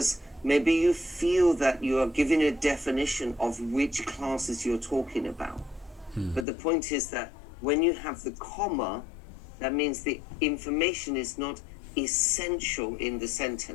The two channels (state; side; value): drops out; right; at 6.5 s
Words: maybe you feel that you are giving a definition of which classes you're talking about. But the point is that when you have the comma, that means the information is not essential in the